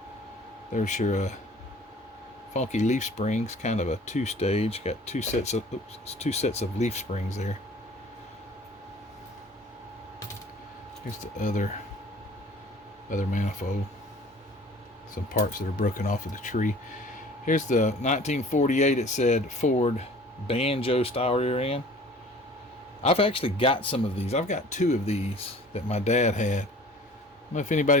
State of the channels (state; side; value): normal; both; correlation 0.48